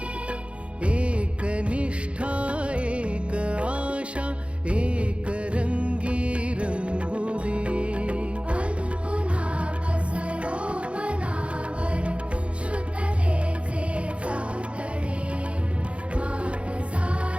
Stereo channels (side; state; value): left; late; 0.060 ms